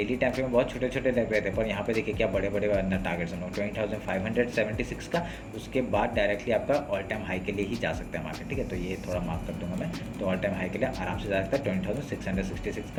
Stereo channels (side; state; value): both; identical; correlation 1.00